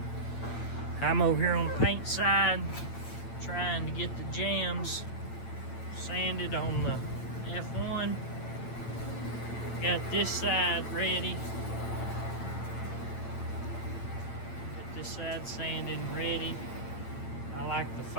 I'm over here on the paint side, trying to get the jams sanded on the F1. Got this side ready. Got this side sanded and ready. I like the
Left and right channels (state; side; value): late; right; 8.7 ms